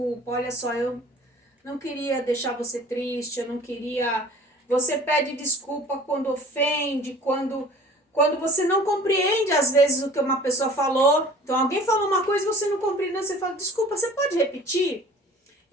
olha só, eu não queria deixar você triste, eu não queria... Você pede desculpa quando ofende, quando você não compreende às vezes o que uma pessoa falou. Então alguém falou uma coisa e você não compreende, você fala, desculpa, você pode repetir?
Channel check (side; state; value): both; normal; correlation 0.46